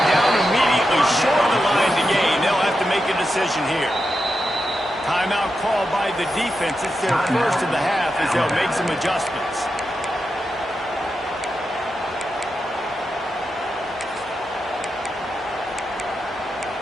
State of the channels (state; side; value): normal; both; correlation 0.88